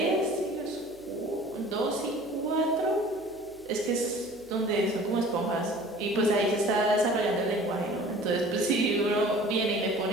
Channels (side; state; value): right; noise; hum, 27 dB below the sound